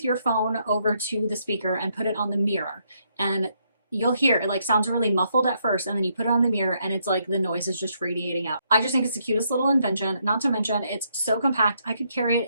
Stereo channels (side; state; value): both; inverted; correlation -0.74